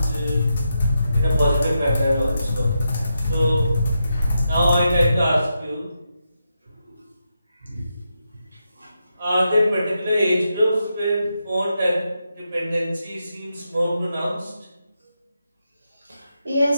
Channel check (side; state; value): both; inverted; correlation -0.85